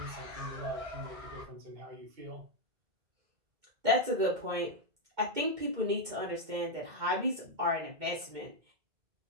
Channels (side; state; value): left; late; 2.1 ms